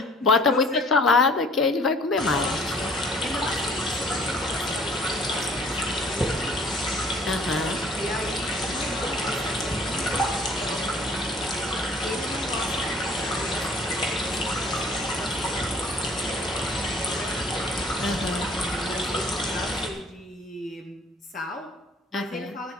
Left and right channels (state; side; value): normal; both; correlation 0.54